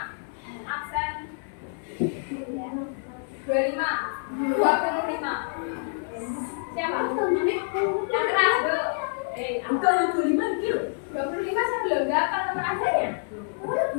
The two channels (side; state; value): right; silent; 60 dB below the other